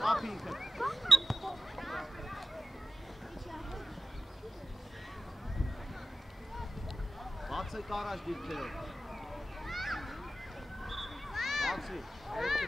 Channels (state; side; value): normal; both; correlation 0.93